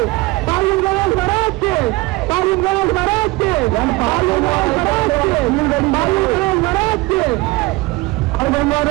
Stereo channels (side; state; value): left; quieter; 21.3 dB